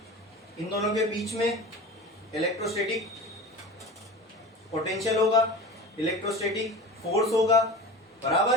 इन दोनों के बीच में इलेक्ट्रोस्टैटिक पोटेंशियल होगा, इलेक्ट्रोस्टैटिक फोर्स होगा,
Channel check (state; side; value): normal; both; correlation 0.33